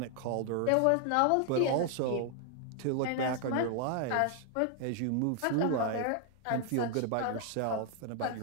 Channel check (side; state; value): both; different; correlation 0.00